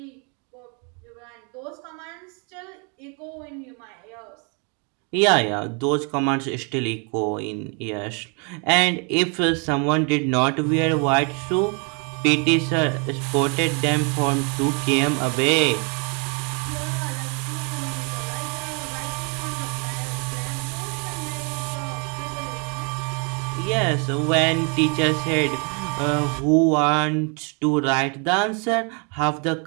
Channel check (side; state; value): left; quieter; 35.7 dB